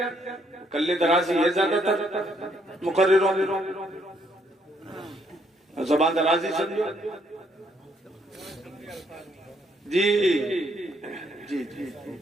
کلے درازی ہے زیادہ تر مقرروں میں، زبان درازی سمجھو. جی جی جی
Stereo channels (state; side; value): normal; both; correlation 0.70